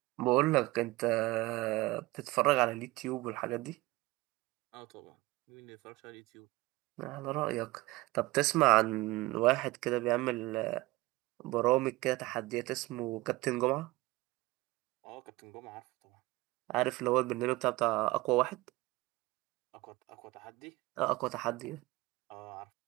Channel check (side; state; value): left; quieter; 20.6 dB